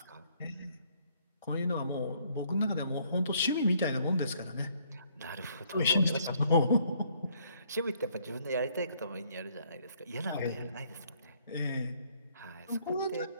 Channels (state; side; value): inverted; both; correlation -0.66